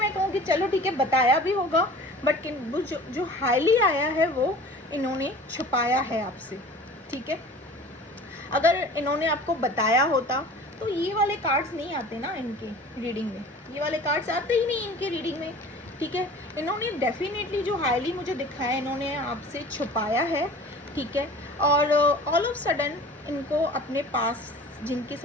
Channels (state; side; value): normal; both; correlation 0.42